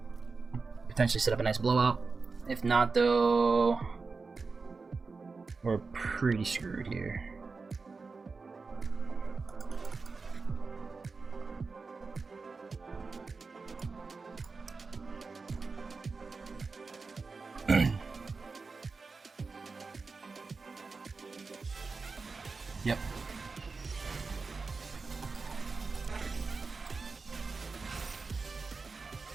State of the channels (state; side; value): quieter; left; 4.3 dB